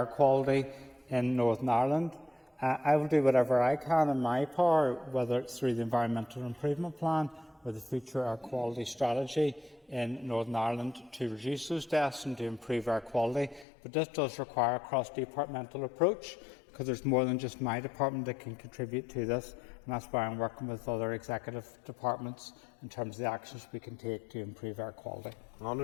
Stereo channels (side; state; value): right; drops out; at 13.7 s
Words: quality in Northern Ireland. I will do whatever I can in my power, whether it's through the Environmental Improvement Plan or the Future Air Quality Strategy in Northern Ireland, to reduce those deaths and to improve air quality. But this does require a cross-departmental approach, because there's more than just my department that can contribute to this, and that's why I'm working with other executive departments in terms of the actions we can take to improve air quality.